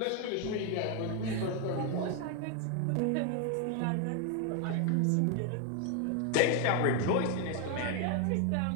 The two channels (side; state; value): both; different; correlation 0.01